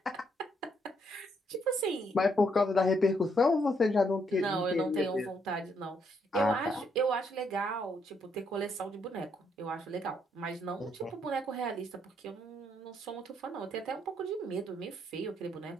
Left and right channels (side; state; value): both; normal; correlation 0.73